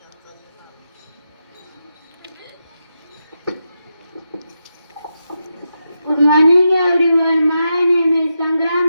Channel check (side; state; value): both; inverted; correlation -0.87